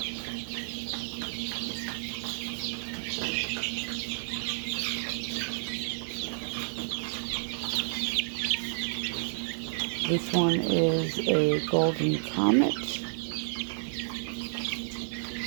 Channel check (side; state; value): left; silent; digital silence